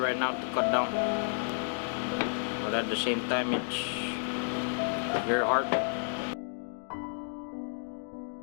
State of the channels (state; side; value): silent; right; digital silence